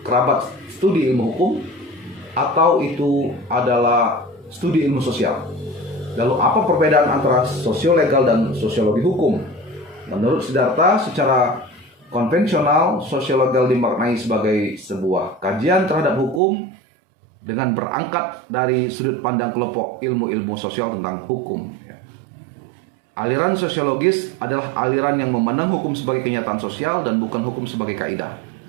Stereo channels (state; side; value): drops out; left; at 16.4 s